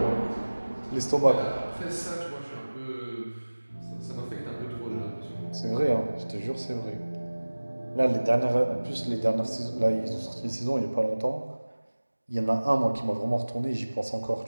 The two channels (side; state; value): both; inverted; correlation -1.00